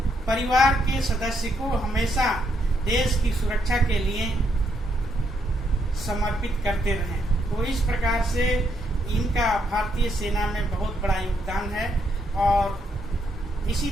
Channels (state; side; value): normal; both; correlation 0.76